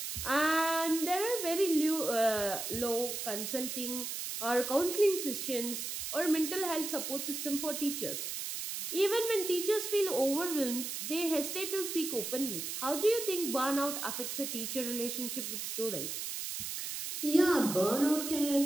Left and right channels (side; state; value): right; noise; hiss, 5 dB below the sound